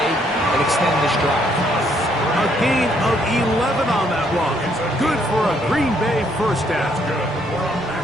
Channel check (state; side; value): normal; both; correlation 0.70